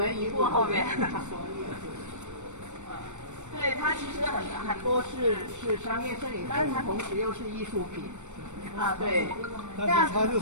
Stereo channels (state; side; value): late; left; 0.84 ms